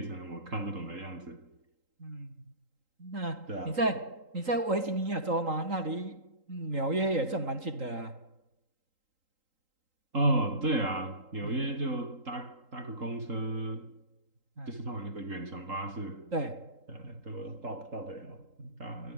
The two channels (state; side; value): late; left; 3.8 ms